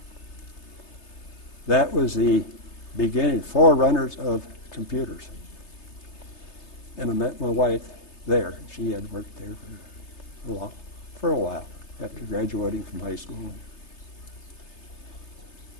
That was the beginning, forerunners of computers. And I met my wife there. She had worked there for a while after graduating from high school.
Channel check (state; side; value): late; right; 3.3 ms